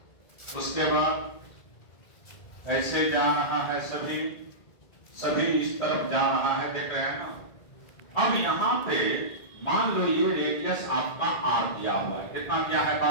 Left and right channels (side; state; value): right; late; 1.3 ms